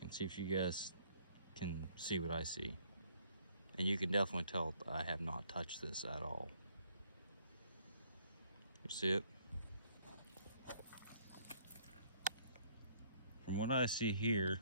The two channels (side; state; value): both; inverted; correlation -0.64